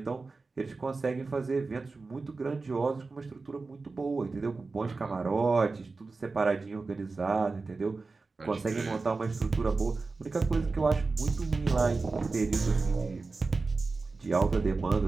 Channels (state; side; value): quieter; left; 3.9 dB